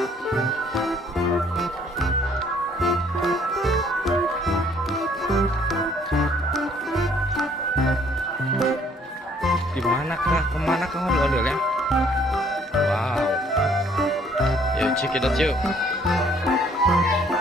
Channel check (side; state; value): both; normal; correlation 0.61